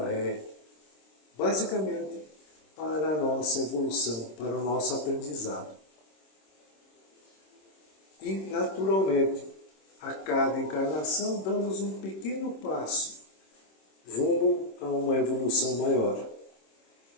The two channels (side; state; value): right; late; 26 ms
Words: é basicamente para a nossa evolução, para o nosso aprendizado. E, naturalmente, a cada encarnação damos um pequeno passo rumo a uma evolução maior.